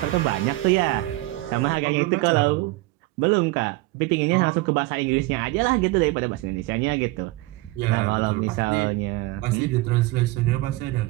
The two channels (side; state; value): left; quieter; 19.9 dB